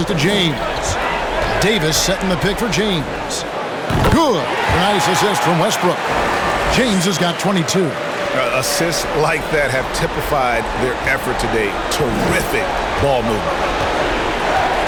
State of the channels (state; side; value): identical; both; correlation 1.00